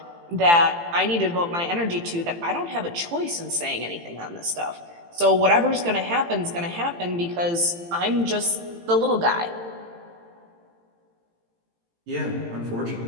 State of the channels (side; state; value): left; late; 18 ms